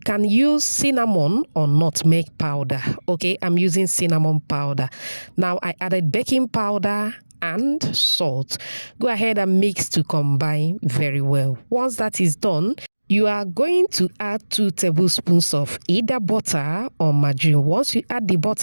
use cinnamon or nutmeg powder. Okay, I'm using cinnamon powder. Now I added baking powder and salt. Go ahead and mix to combine very well. Once that is done, you are going to add 2 tablespoons of either butter or margarine. Once you add the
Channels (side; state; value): both; inverted; correlation -1.00